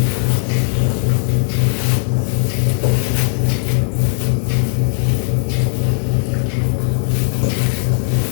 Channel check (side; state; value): right; silent; digital silence